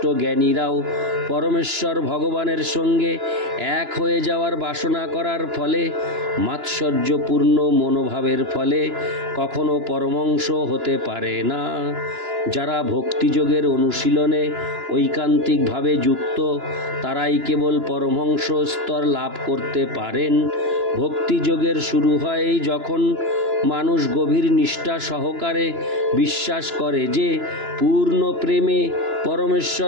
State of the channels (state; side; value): late; left; 2.9 ms